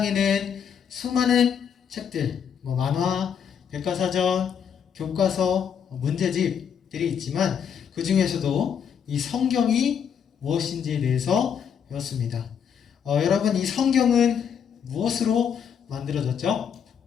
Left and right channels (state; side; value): quieter; right; 7.8 dB